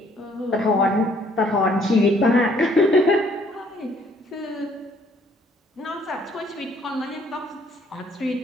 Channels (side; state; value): both; normal; correlation 0.62